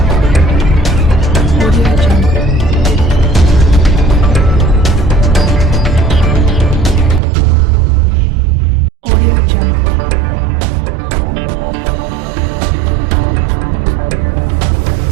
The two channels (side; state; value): left; drops out; at 7.2 s